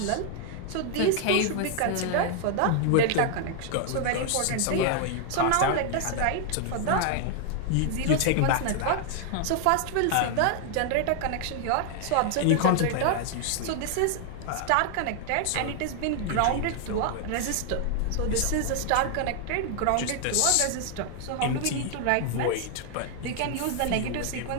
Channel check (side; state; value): both; different; correlation 0.00